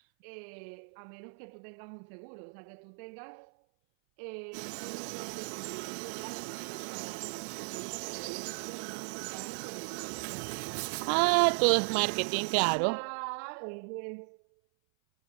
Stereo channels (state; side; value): silent; left; 54 dB below the other